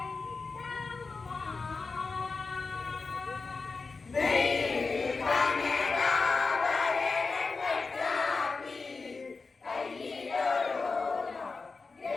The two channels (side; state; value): right; quieter; 4.2 dB